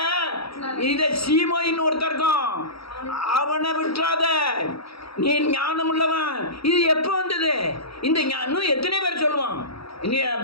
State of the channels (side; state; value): right; late; 0.76 ms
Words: இத சீமோயின்னு ஒருத்தர் இருக்கான், அவனை விட்டுறாத. நீ ஞானம் உள்ளவன். இது எப்போ வந்தது? இந்த இன்னும் எத்தனை பேர் சொல்லுவான், நீ